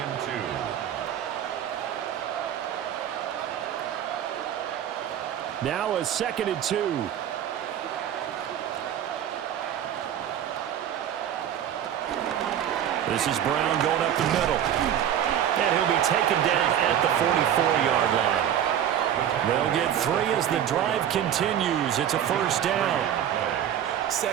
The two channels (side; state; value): left; quieter; 10.1 dB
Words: 2. Now a 2nd and 2. This is Brown going up the middle. And he'll be taken down at the 44-yard line. They'll get 3 as the drive continues. It's a 1st down.